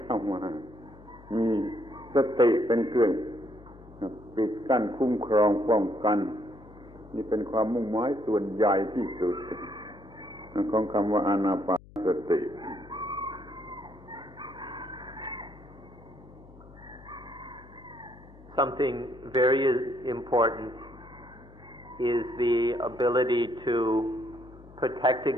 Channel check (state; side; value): noise; left; hum, 21 dB below the sound